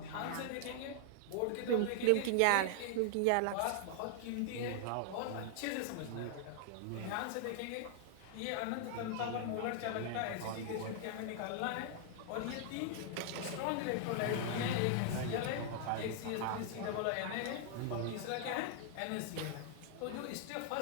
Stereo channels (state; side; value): different; both; correlation 0.00